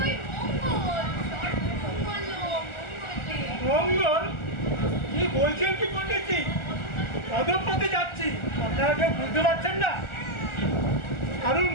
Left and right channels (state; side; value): late; right; 1.4 ms